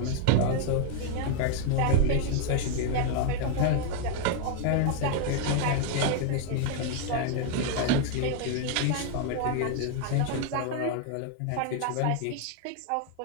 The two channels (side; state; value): both; different; correlation 0.00